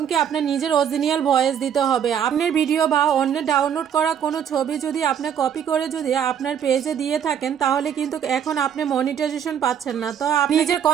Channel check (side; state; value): left; quieter; 8.6 dB